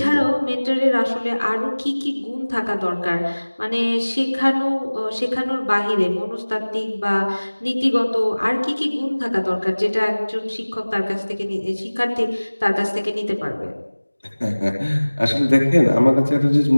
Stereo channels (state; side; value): inverted; both; correlation -1.00